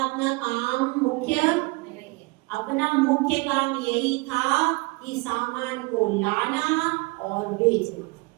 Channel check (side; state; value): left; quieter; 26.0 dB